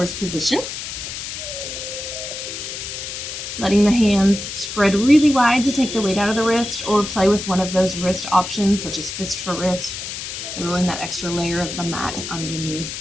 position. Letting the hands spread really wide to take the weight out of the wrist, or play with one of those wrist options, such as fist for wrist, rolling that extra layer of the mat underneath.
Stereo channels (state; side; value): noise; left; hiss, 7 dB below the sound